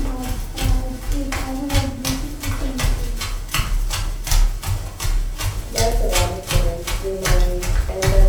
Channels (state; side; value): identical; both; correlation 1.00